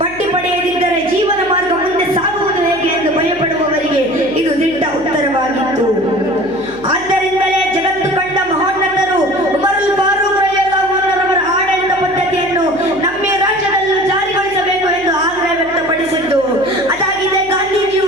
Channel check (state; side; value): noise; left; hum, 22 dB below the sound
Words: ಬಡ್ಡಿ ಪಡೆಯದಿದ್ದರೆ ಜೀವನ ಮಾರ್ಗ ಮುಂದೆ ಸಾಗುವುದು ಹೇಗೆ ಎಂದು ಭಯಪಡುವವರಿಗೆ ಇದು ದಿಟ್ಟ ಉತ್ತರವಾಗಿತ್ತು. ಆದ್ದರಿಂದಲೇ ಜಗತ್ತು ಕಂಡ ಮಹೋನ್ನತರು ಉಮರ್ ಅಲ್ ಫಾರೂಕ್ ರಲಿಯಲ್ಲಾಹು ಅನ್ಹುರವರ ಆಡಳಿತ ಪದ್ಧತಿಯನ್ನು ನಮ್ಮ ರಾಜ್ಯದಲ್ಲೂ ಜಾರಿಗೊಳಿಸಬೇಕು ಎಂದು ಆಗ್ರಹ ವ್ಯಕ್ತಪಡಿಸಿದ್ದು. ಅದಾಗಿದೆ